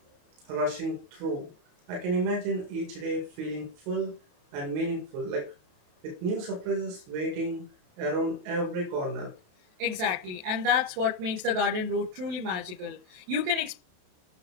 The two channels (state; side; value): late; left; 28 ms